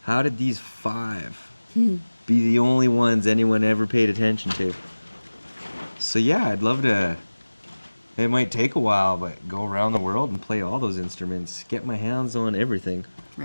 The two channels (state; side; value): inverted; both; correlation -1.00